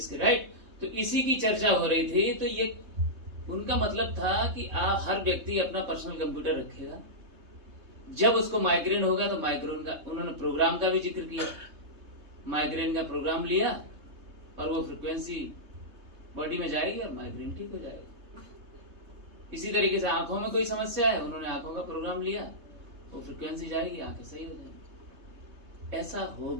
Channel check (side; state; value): left; late; 3.2 ms